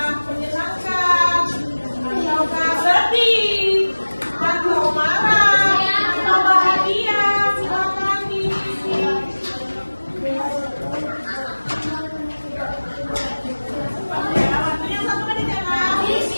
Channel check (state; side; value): inverted; both; correlation -1.00